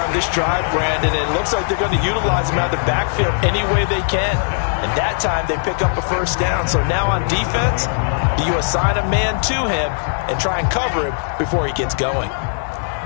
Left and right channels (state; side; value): silent; right; digital silence